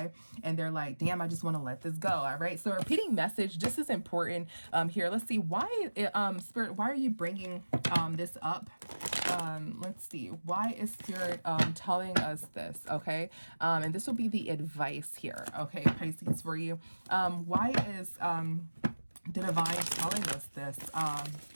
and they're like, damn, I just want to let this go. All right, so repeating message, this is important here. Let's see, why Spirit, why are you bringing this up? Let's see, why is Spirit telling us this, okay? And this will be the advice here, okay, Pisces, for you. Why is the Divine telling us this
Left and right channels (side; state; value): both; inverted; correlation -1.00